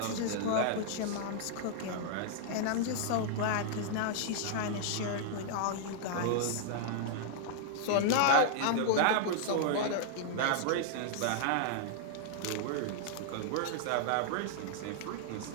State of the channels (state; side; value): different; both; correlation -0.01